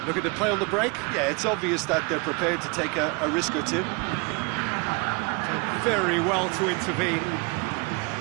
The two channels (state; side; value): quieter; left; 30.4 dB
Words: Look at the play on the break. Yeah, it's obvious that they're prepared to take a risk or two. Done very well to intervene.